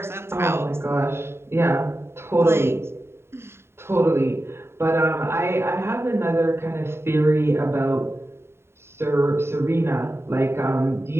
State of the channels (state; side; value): late; left; 0.12 ms